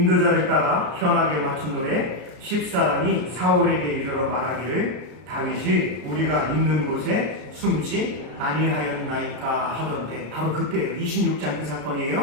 따라 현악에 맞춘 노래. 10사람이 사울에게 이르러 말하기를, 다윗이 우리가 있는 곳에 숨지 아니하였나이까 하던데, 바로 그때예요. 26장 그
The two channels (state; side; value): late; left; 33 ms